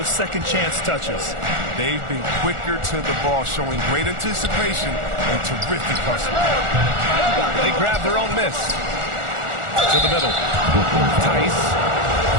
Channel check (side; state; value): left; late; 1.4 ms